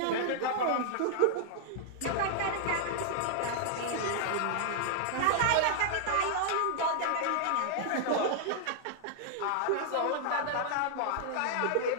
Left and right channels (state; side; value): different; both; correlation -0.01